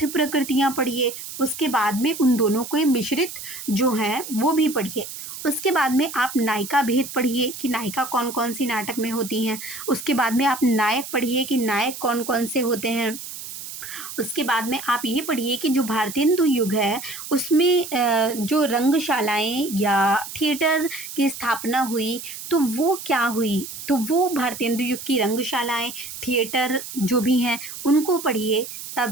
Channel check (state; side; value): noise; right; hiss, 10 dB below the sound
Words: प्रकृतियाँ पढ़िए। उसके बाद में उन दोनों को मिश्रित जो हैं वो भी पढ़िए। उसके बाद में आप नायिका भेद पढ़िए कि नायिका कौन कौन सी नाटक में होती हैं। उसके बाद में आप नायक पढ़िए कि नायक कौन कौन से होते हैं। उसके बाद में आप ये पढ़िए कि जो भारतेंदु युग है उसमें जो रंगशालाएँ या थिएटर की स्थापना हुई तो वो क्या हुई? तो वो भारतेंदु युग की रंगशालाएँ, थिएटर जो भी हैं उनको पढ़िए, तब